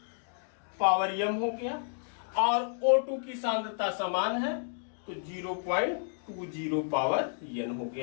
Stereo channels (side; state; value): right; silent; digital silence